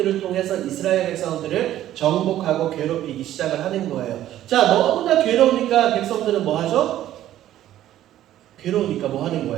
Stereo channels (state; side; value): quieter; left; 12.8 dB